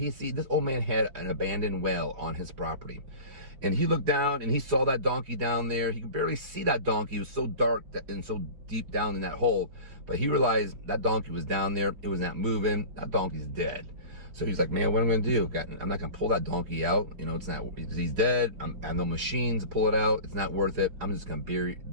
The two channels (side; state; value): left; late; 4.8 ms